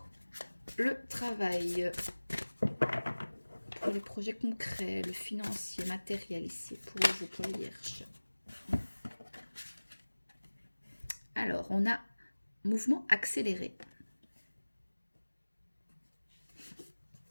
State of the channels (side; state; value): both; inverted; correlation -1.00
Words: le travail, pour les projets concrets, le financier, matériel ici, pour vous, pour les vierges. Alors, on a mouvement accéléré.